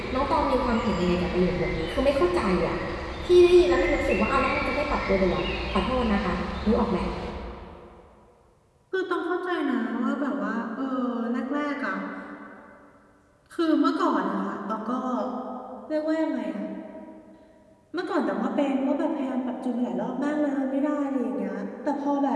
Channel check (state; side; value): identical; both; correlation 1.00